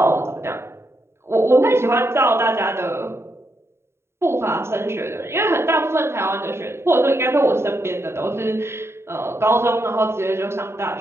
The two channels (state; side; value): late; left; 0.12 ms